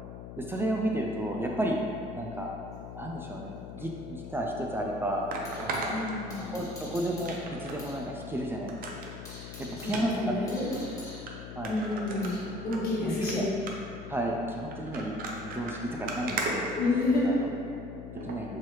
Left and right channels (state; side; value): noise; left; hum, 10 dB below the sound